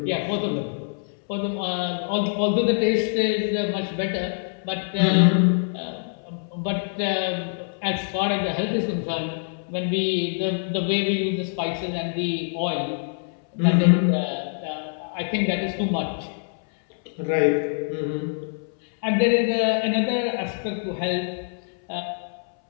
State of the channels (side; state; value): right; silent; 61 dB below the other